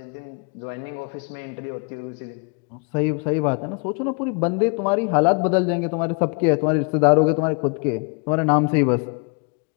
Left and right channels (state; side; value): quieter; right; 36.4 dB